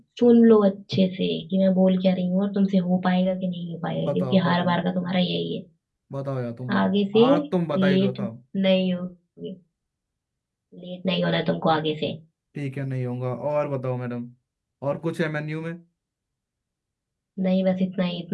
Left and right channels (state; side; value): identical; both; correlation 1.00